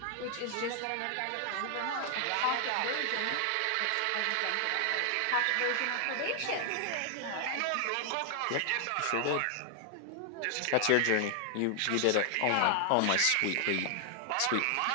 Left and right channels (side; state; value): both; different; correlation 0.00